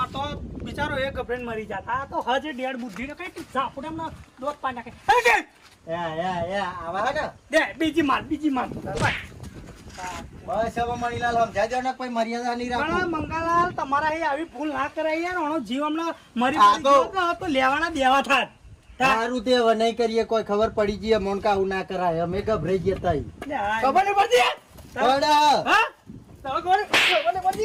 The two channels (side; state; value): both; identical; correlation 1.00